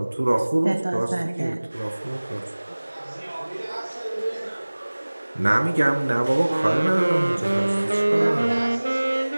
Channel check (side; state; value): both; inverted; correlation -1.00